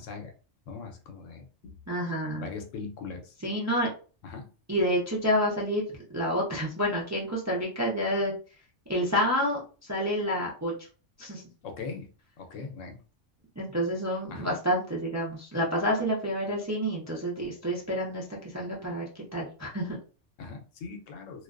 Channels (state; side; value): normal; both; correlation -0.13